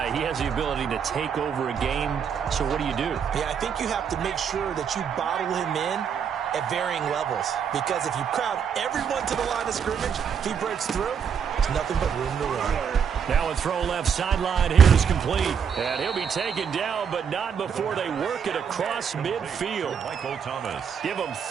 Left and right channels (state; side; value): quieter; left; 7.3 dB